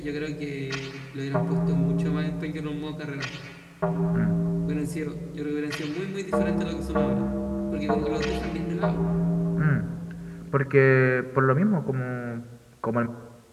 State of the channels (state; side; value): identical; both; correlation 1.00